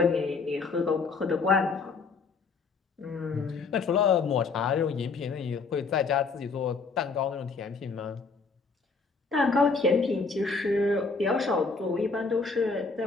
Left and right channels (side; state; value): right; quieter; 4.5 dB